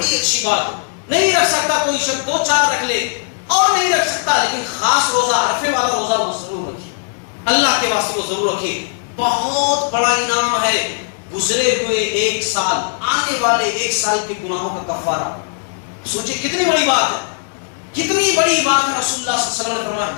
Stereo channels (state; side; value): silent; right; digital silence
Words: اچھی بات ہے۔ نہیں رکھ سکتا کوئی شخص 2-4 رکھ لے، اور نہیں رکھ سکتا لیکن خاص روزہ عرفے والا روزہ وہ ضرور رکھے، اللہ کے واسطے وہ ضرور رکھے۔ بہت بڑا انعام ہے گزرے ہوئے 1 سال، آنے والے 1 سال کے گناہوں کا کفارہ۔ سوچیں کتنی بڑی بات ہے، کتنی بڑی بات ہے۔ رسول اللہ صلی اللہ علیہ وسلم نے فرمایا